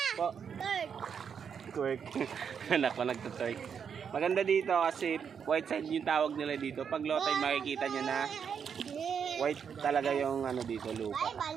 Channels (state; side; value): quieter; left; 7.1 dB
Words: Po, twerk. Anak ko nagtutwerk. Maganda dito kasi white side yung tawag nila dito. Pag low tide makikita nyo na white talaga yung ano dito, lupa.